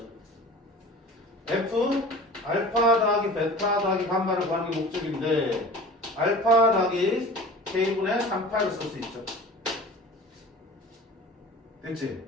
f 알파 더하기 베타 더하기 감마를 구하는 게 목적인데 알파 더하기 k분의 3파이를 쓸 수 있죠. 됐지?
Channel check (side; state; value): both; normal; correlation 0.40